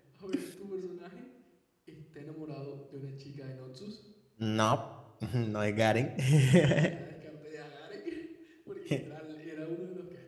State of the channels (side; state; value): both; identical; correlation 1.00